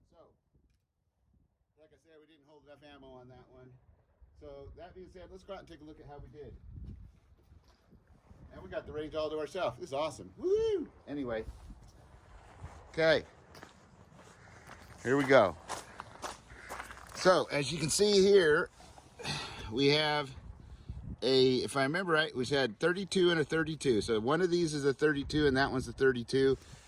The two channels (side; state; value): both; identical; correlation 1.00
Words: So, like I said, we didn't hold enough ammo on that one. So, that being said, let's go out and take a look at how we did. And we got the range all to ourselves. This is awesome. Woo! Anyway. Okay. Here we go. So, as you can see here, we have if I remember right, we had 32 and a 32. So, one of these is a 32 and that one's a 32.